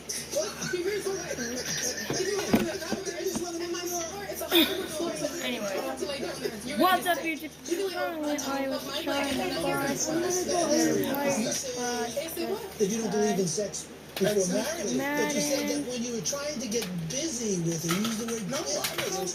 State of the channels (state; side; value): identical; both; correlation 1.00